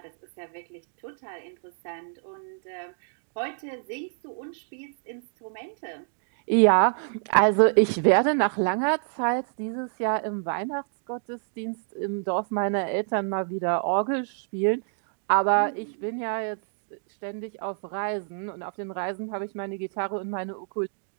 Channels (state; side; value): silent; left; digital silence